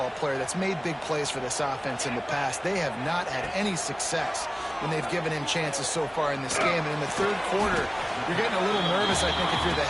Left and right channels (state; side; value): identical; both; correlation 1.00